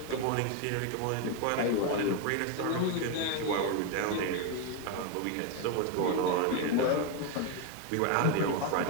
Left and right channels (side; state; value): both; different; correlation 0.02